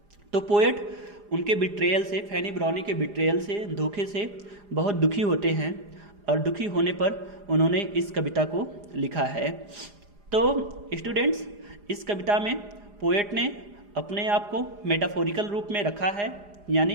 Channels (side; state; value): left; late; 4.9 ms